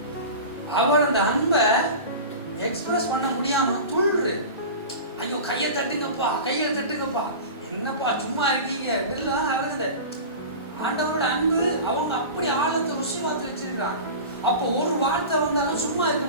அவர் அந்த அன்பை எக்ஸ்பிரஸ் பண்ண முடியாம துள்ளுரு. ஐயோ கையை தட்டுங்கப்பா, கையை தட்டுங்கப்பா, என்னப்பா சும்மா இருக்கீங்க இதெல்லாம் ஆகுது. ஆண்டவரோட அன்பு அவங்க அப்படி ஆழத்தை ருசி பார்த்து வச்சிருக்காங்க. அப்போ ஒரு வார்த்தை வந்தாலும் சும்மா இருக்க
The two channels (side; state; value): both; inverted; correlation -0.32